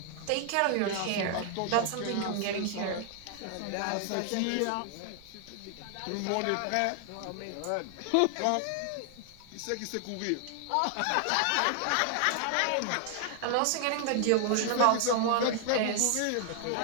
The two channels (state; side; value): different; both; correlation 0.00